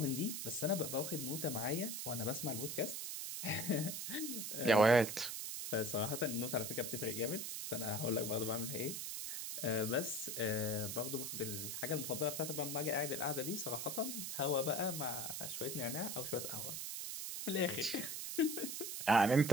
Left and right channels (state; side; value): noise; right; hiss, 4 dB below the sound